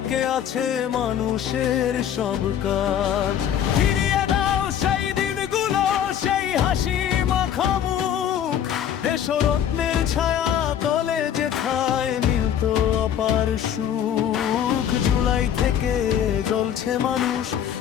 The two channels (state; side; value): quieter; right; 9.6 dB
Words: আছে মানুষের সব কাজ। ফিরিয়ে দাও সেই দিনগুলো, সেই হাসি মাখা মুখ, দেশরত্নের ছায়া তলে যেথায় মিলতো অপার সুখ। জুলাই থেকে জ্বলছে মানুষ,